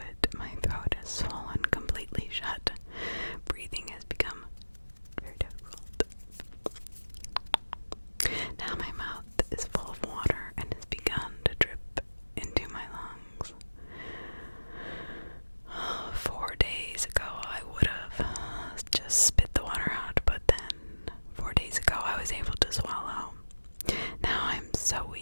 My throat is swollen completely shut. Breathing has become very difficult. Now my mouth is full of water and has begun to drip into my lungs. 4 days ago I would have just spit the water out, but then 4 days ago I was able to swallow. Now I'm so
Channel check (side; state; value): both; inverted; correlation -1.00